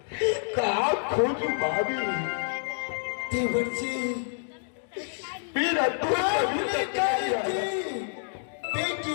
कहाँ खोजूं भाभी। देवर जी मेरा आपने कही थी बेटी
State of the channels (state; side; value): silent; right; digital silence